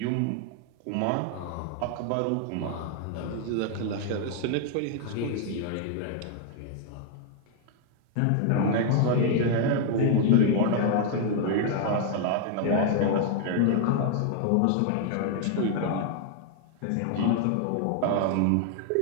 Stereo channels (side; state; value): both; different; correlation 0.00